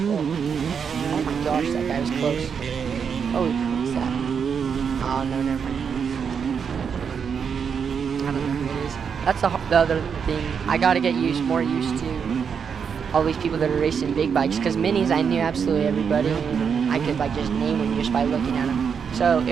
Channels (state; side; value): quieter; left; 6.7 dB